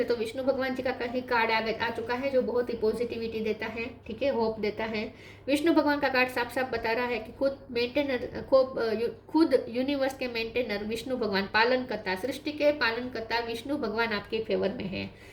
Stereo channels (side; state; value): both; identical; correlation 1.00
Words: तो विष्णु भगवान जी का कहीं कार्ड आ चुका है जो बहुत ही पॉजिटिविटी देता है, ठीक है, होप देता है। विष्णु भगवान का कार्ड साफ साफ बता रहा है कि खुद यूनिवर्स के मेंटेनर विष्णु भगवान, पालन करता, सृष्टि के पालन करता विष्णु भगवान आपके फेवर में है।